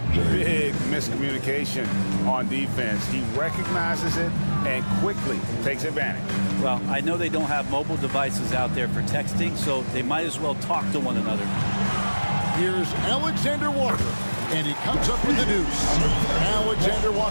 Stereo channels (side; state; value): both; inverted; correlation -1.00